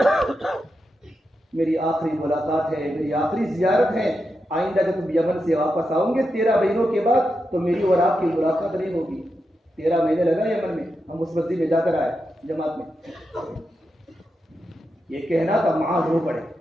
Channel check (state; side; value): normal; both; correlation 0.87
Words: ہوگا۔ میری آخری ملاقات ہے، میری آخری زیارت ہے، آئندہ جب تم یمن سے واپس آؤ گے 13 مہینوں کے بعد تو میری اور آپ کی ملاقات نہیں ہوگی۔ 13 مہینے لگا یمن میں، ہم اس مسجد میں جا کر آئے جماعت میں۔ یہ کہنا تھا معاذ رو پڑے،